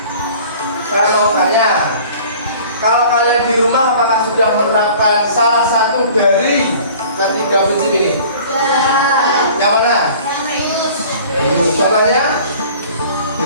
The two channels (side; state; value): both; inverted; correlation -0.47